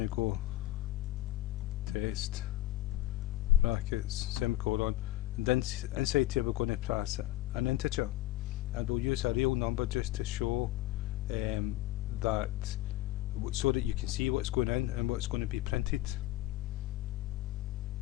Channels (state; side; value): quieter; right; 15.4 dB